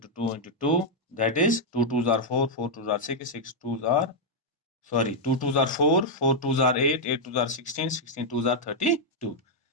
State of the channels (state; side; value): normal; both; correlation -0.04